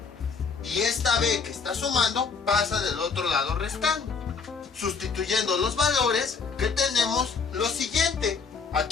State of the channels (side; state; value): right; quieter; 5.2 dB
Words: y esta B que está sumando pasa del otro lado restando. Sustituyendo los valores, que tenemos lo siguiente.